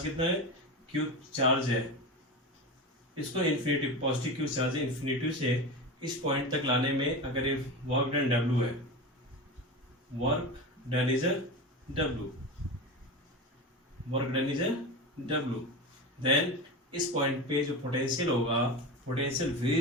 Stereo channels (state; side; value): normal; both; correlation 0.24